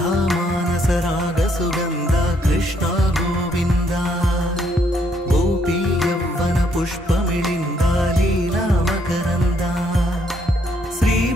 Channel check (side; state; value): both; normal; correlation 0.71